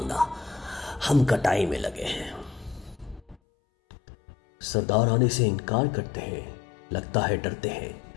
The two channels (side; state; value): right; drops out; at 3.4 s